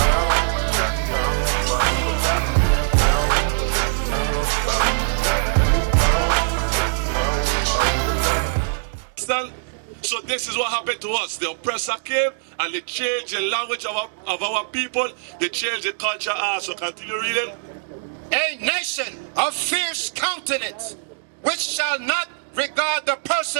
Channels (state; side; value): silent; left; digital silence